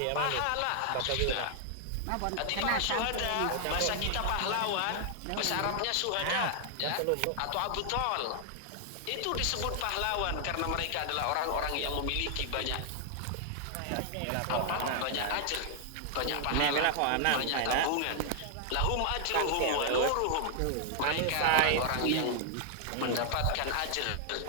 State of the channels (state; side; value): different; both; correlation 0.00